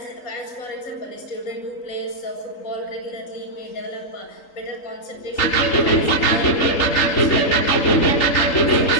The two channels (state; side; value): late; right; 3.8 ms